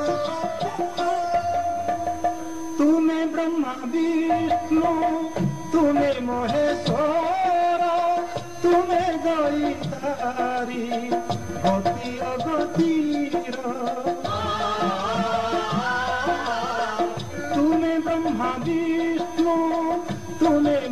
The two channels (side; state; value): both; identical; correlation 1.00